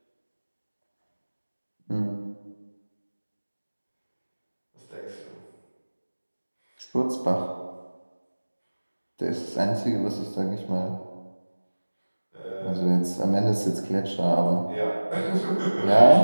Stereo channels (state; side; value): inverted; both; correlation -1.00